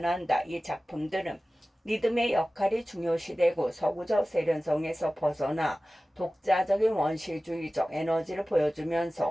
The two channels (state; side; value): normal; both; correlation 0.96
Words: 이 작품들은 리듬의 역할이 중요시되고 서구적 세련성에서 벗어나 독자적인 원시주의적 에너지를